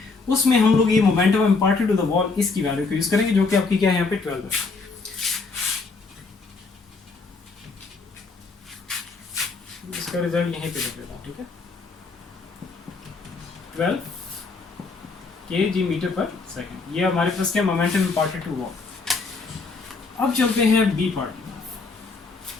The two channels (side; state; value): right; quieter; 4.2 dB